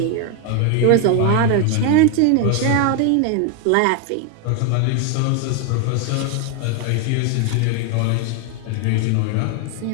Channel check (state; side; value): different; both; correlation 0.01